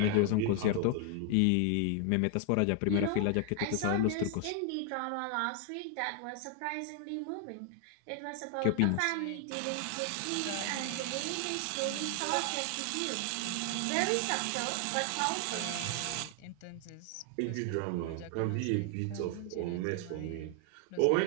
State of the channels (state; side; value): different; both; correlation 0.00